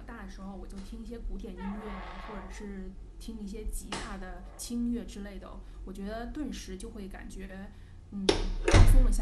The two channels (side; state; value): both; identical; correlation 1.00